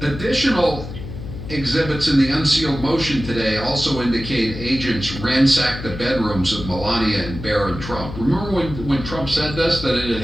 additional Exhibits in the unsealed motion today also indicate agents ransacked the bedrooms of Melania and Barron Trump. Remember when Trump said this, that it had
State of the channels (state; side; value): noise; left; hum, 10 dB below the sound